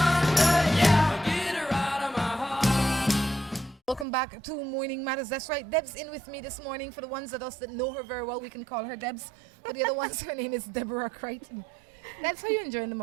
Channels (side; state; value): left; drops out; at 4.0 s